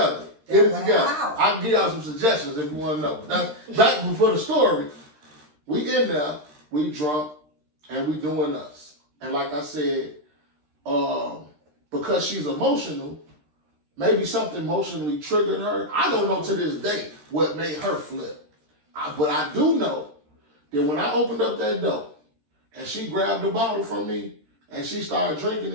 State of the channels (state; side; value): late; left; 13 ms